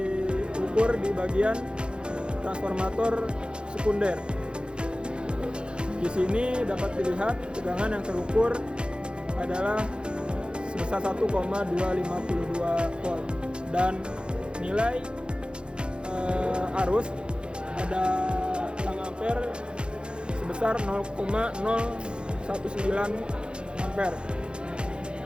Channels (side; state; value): left; late; 0.052 ms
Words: di bagian transformator sekunder. Di sini dapat dilihat tegangan yang terukur adalah sebesar 1,252 volt dan nilai arus pada tang ampere sebesar 0,019 ampere.